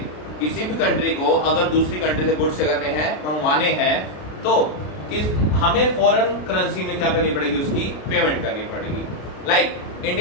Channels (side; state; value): right; late; 33 ms